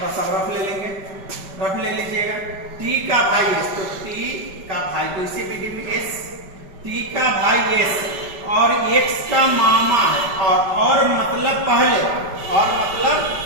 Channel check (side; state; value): left; late; 5.2 ms